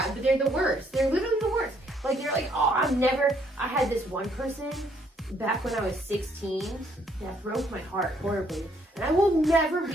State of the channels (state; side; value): normal; both; correlation 0.68